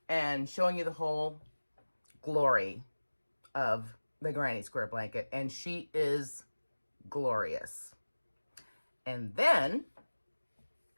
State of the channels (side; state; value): both; inverted; correlation -1.00